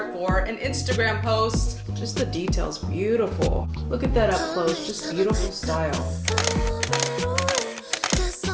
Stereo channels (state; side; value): identical; both; correlation 1.00